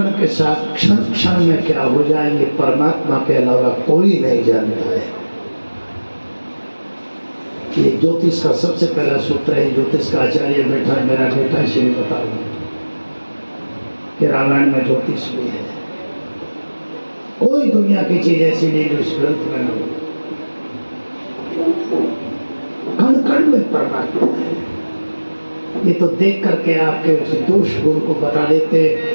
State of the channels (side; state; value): both; inverted; correlation -1.00